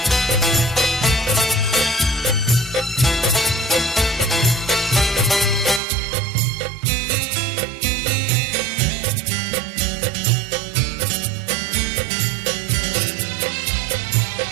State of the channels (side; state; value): left; drops out; at 5.8 s